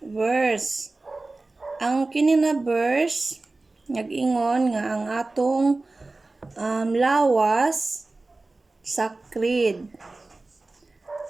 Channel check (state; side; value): quieter; left; 3.2 dB